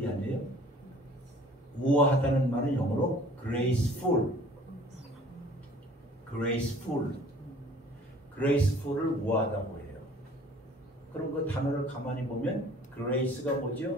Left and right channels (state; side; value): normal; both; correlation 0.52